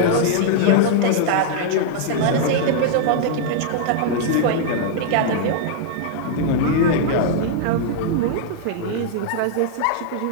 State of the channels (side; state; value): both; different; correlation -0.01